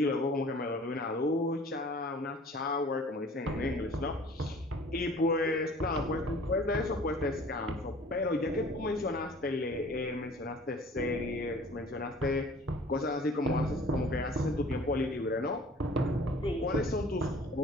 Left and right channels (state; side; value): normal; both; correlation 0.49